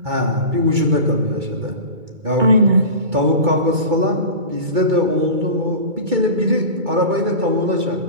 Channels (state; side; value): late; left; 2.3 ms